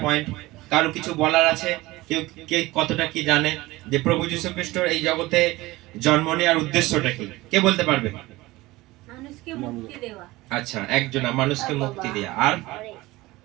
পয়েন্ট কারো কিছু বলার আছে? কেউ কে কতটা কি জানে যে প্রভু যিশু খ্রিস্ট এই জগতে জন্ম নেওয়ার উদ্দেশ্যটা কি? কে বলতে পারবে? মানুষকে মুক্তি দেওয়া। আচ্ছা, একজনা মানুষকে মুক্তি দেওয়া, আর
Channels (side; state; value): left; quieter; 19.7 dB